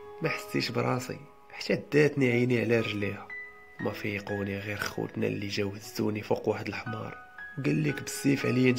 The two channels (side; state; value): both; identical; correlation 1.00